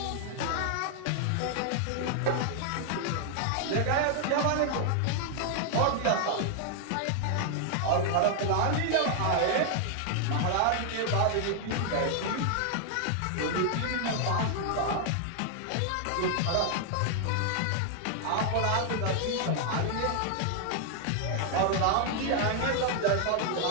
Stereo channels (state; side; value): different; both; correlation 0.00